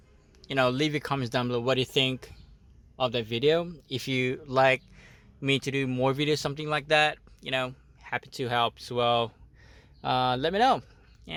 leave your comments down below. What do you think of that video? If you like me to do more videos, something like that, happy to help as well. Let me know,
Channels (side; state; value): both; identical; correlation 1.00